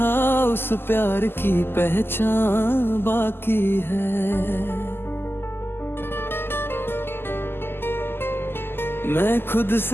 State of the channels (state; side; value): late; right; 0.11 ms